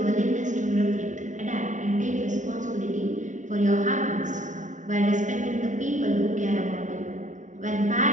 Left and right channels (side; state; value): left; late; 0.36 ms